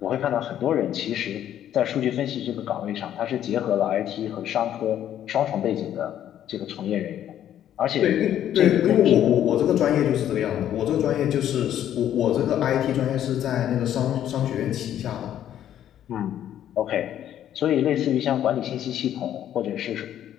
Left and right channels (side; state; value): right; quieter; 11.0 dB